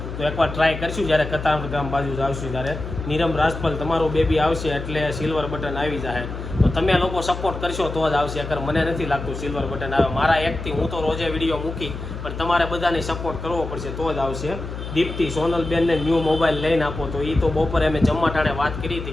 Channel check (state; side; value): noise; left; hum, 8 dB below the sound